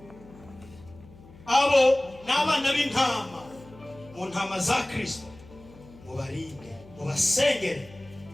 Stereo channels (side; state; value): left; noise; hum, 22 dB below the sound